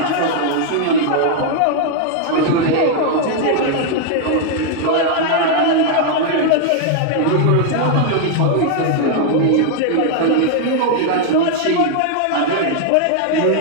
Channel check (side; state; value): both; different; correlation 0.00